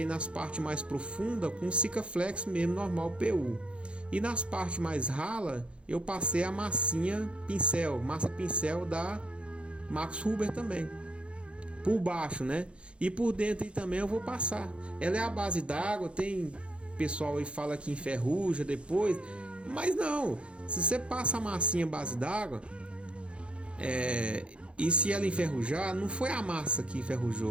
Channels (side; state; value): left; late; 0.059 ms